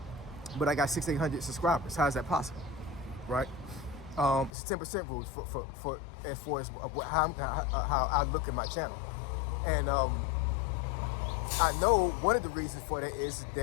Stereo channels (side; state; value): right; drops out; at 4.5 s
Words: But I got 6,800 subscribers. How is that possible, right? It's 10% rules for as far as how I look at my channel. And I know one of the reasons for that is